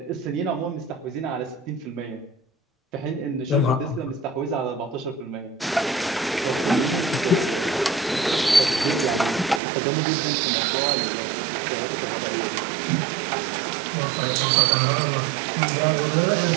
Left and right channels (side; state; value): left; drops out; at 9.6 s